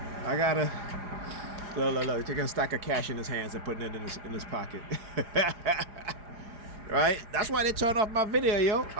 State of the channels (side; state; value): left; late; 4.9 ms